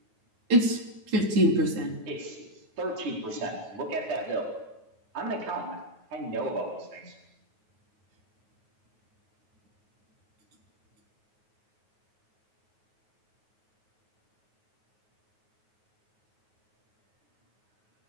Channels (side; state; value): left; late; 9.3 ms